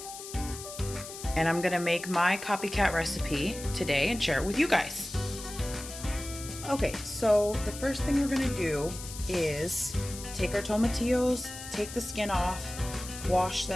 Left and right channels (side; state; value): left; noise; hiss, 11 dB below the sound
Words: And I'm gonna make my copycat recipe today and share it with you guys. Okay, so the first thing we're gonna do is take our tomatillos, take the skin off, wash